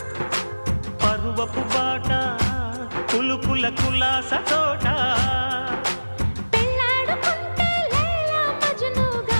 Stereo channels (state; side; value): inverted; both; correlation -1.00